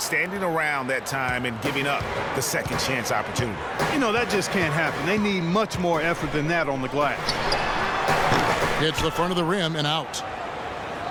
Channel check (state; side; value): identical; both; correlation 1.00